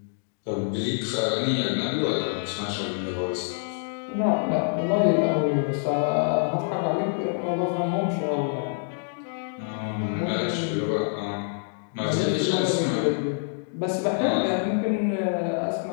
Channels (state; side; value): silent; right; digital silence